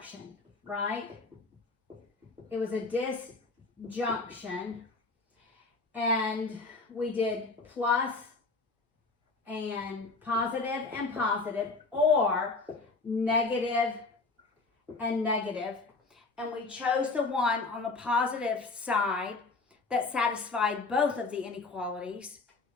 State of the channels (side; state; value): right; quieter; 3.7 dB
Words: right? It was a disjunction. And we did plus and positive, or negative and negative. And we chose the one on the positive side that satisfied both of the inequalities.